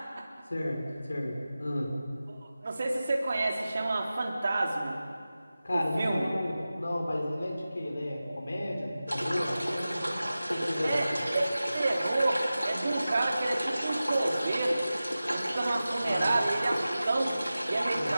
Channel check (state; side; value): inverted; both; correlation -0.95